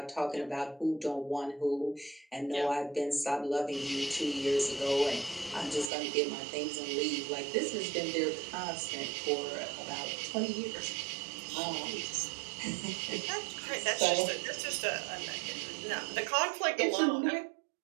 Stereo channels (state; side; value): drops out; left; at 5.9 s